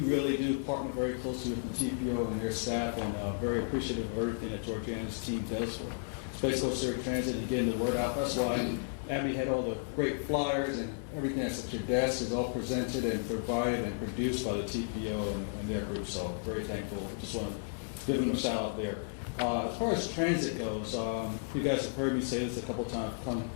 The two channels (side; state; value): right; silent; 56 dB below the other